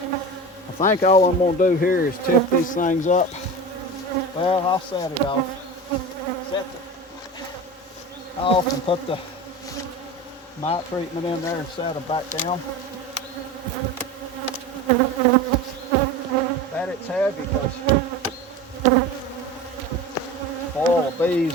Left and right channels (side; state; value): both; normal; correlation 0.31